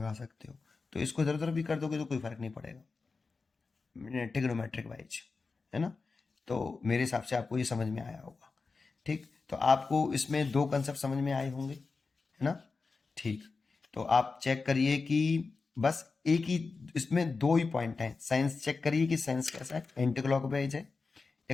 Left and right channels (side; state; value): right; quieter; 4.3 dB